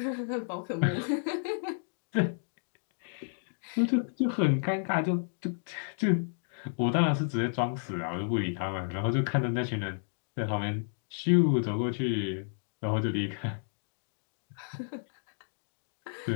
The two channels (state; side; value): silent; right; digital silence